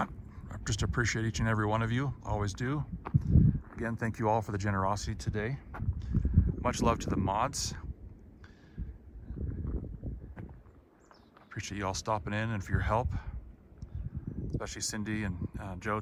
I just appreciate each and every one of you. Always do. Again, thank you all for the generosity today. Much love to the mods. Appreciate you all stopping in and for your help, especially Cindy and Joe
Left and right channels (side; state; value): both; identical; correlation 1.00